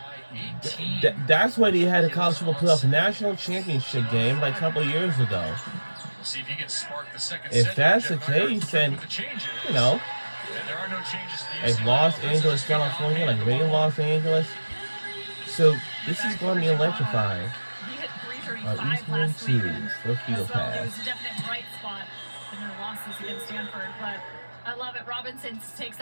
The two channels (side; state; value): both; inverted; correlation -1.00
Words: That's why they had a college football playoff national championship game like a couple of years ago. If that's the case, then, you know, like Los Angeles, California, like right in Los Angeles. So this is going to be electrifying. Eastman 2 for Field Pass. I love it. Robinson takes